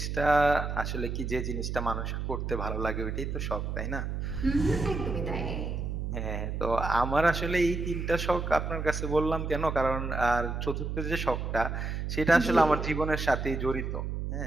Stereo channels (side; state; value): right; noise; hum, 3 dB below the sound